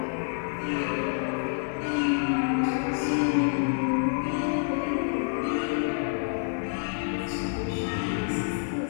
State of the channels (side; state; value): right; silent; digital silence